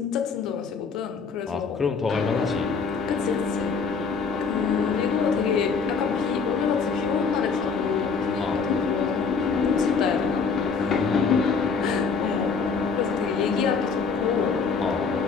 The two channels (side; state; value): right; quieter; 5.3 dB